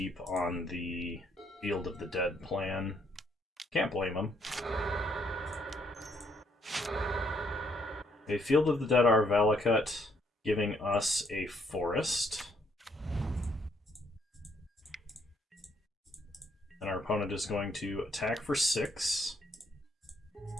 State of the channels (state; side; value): normal; both; correlation 0.70